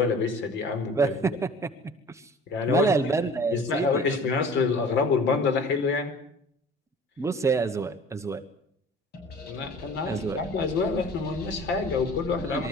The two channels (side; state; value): both; normal; correlation 0.45